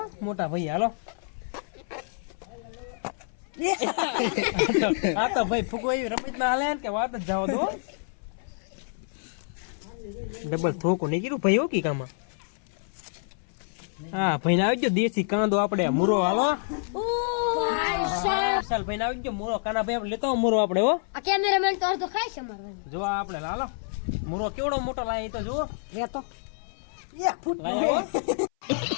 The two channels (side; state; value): right; silent; 57 dB below the other